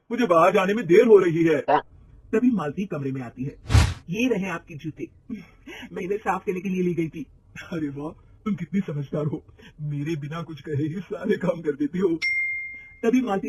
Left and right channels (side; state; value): both; identical; correlation 1.00